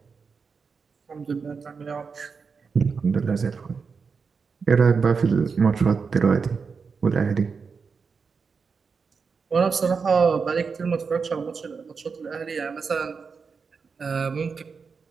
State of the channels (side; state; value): left; quieter; 5.3 dB